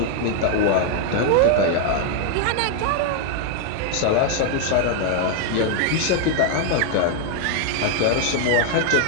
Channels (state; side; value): different; both; correlation 0.00